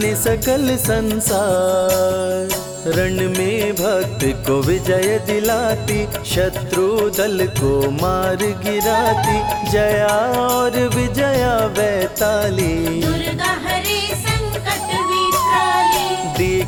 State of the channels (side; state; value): both; identical; correlation 1.00